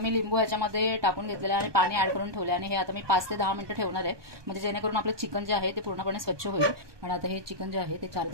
लिंबू याच्यामध्ये टाकून घेतलेलं आहे आणि पाणी ऍड करून ठेवले आणि हे आता मी 5 ते 10 मिनिटं ठेवणार आहे, म्हणजे जेणेकरून आपलं चिकन जे आहे ते पूर्णपणे स्वच्छ होईल। आणि आता हे चिकन जे आहे ते 4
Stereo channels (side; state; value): left; late; 1.2 ms